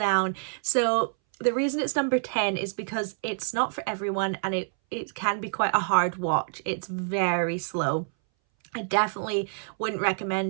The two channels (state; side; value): silent; left; 60 dB below the other